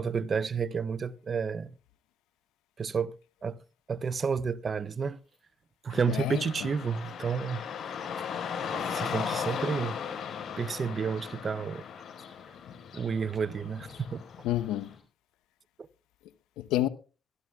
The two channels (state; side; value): normal; both; correlation 0.69